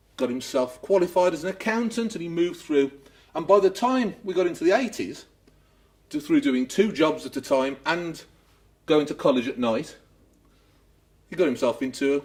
got himself qualified as an accountant, and he moved through. And by the time we got into the 80s, through doing 2 jobs at a time and going to college at night, he got himself into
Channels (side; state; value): both; identical; correlation 1.00